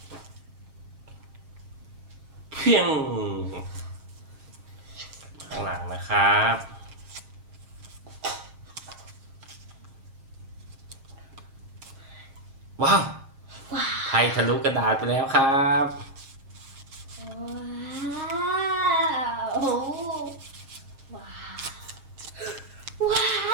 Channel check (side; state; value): left; late; 7.4 ms